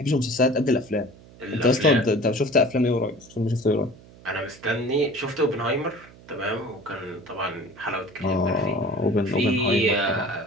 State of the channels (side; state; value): right; noise; hum, 22 dB below the sound